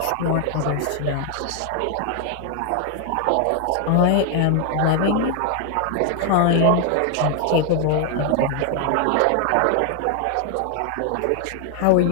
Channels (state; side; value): different; both; correlation 0.00